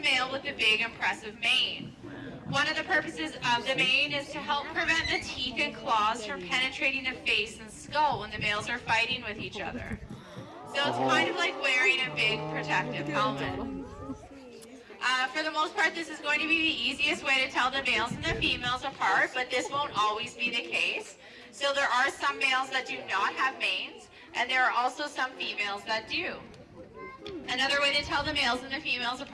with the big impressive mane. One of the purposes of the mane is to help prevent the teeth and claws from penetrating the face and skull when the males are fighting with each other. So it's kind of like wearing a big protective helmet. For the most part, this is going to be the easiest way to tell the males and the females apart, but this won't always be the case. So there are some males that do not have manes, and there are also some females that do. Another way to tell the males and the females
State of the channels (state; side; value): identical; both; correlation 1.00